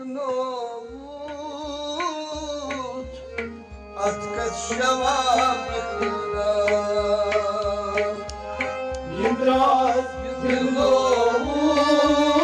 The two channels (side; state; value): both; identical; correlation 1.00